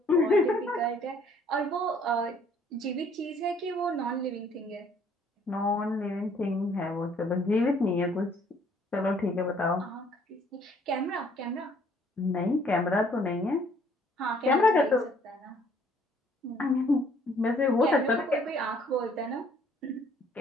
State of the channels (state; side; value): normal; both; correlation 0.61